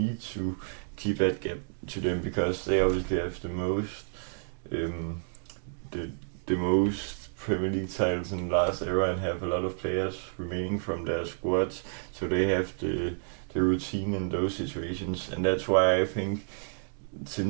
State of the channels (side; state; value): left; silent; digital silence